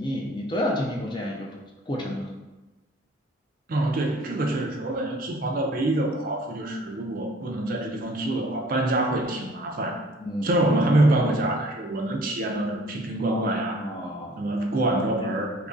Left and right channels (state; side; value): normal; both; correlation 0.53